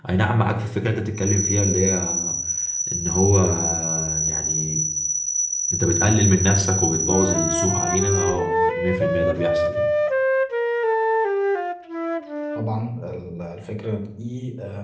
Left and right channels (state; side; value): identical; both; correlation 1.00